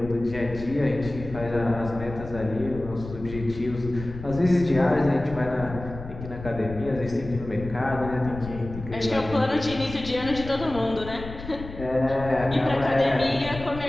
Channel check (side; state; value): left; noise; rumble, 11 dB below the sound